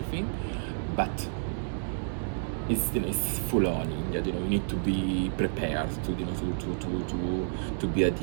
but it's full on India. You need to be prepared to be a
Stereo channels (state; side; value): silent; left; digital silence